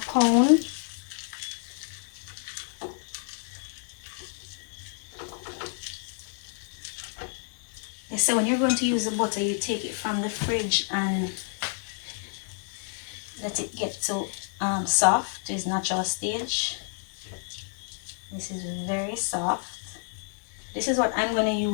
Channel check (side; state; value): right; silent; 58 dB below the other